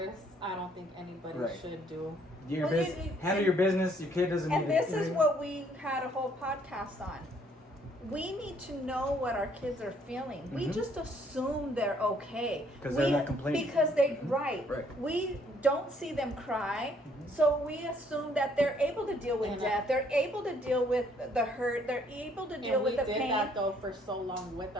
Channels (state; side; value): normal; both; correlation 0.65